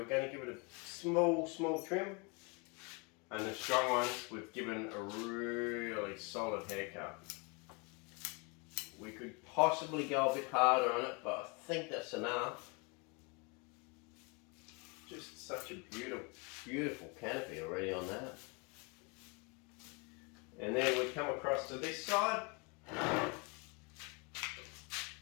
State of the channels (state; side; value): quieter; right; 30.7 dB